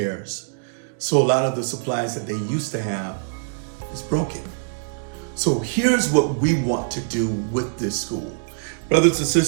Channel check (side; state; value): left; silent; digital silence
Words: So a lot of the supplies that they used to have is broken. So here's what we want to do with this school. Brothers and